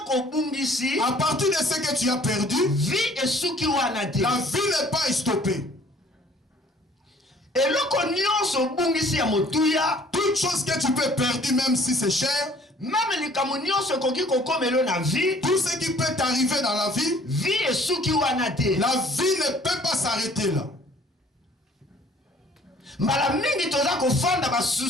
à partir de ce que tu as perdu, la vie n'est pas stoppée. Toute chose que tu peux perdre, même si c'est cher, tout ce qui peut t'arriver dans la vie, la vie ne peut pas s'arrêter là.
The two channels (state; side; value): normal; both; correlation 0.55